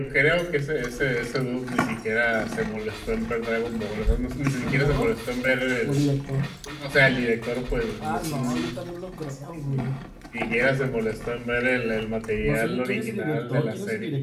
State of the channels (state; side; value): identical; both; correlation 1.00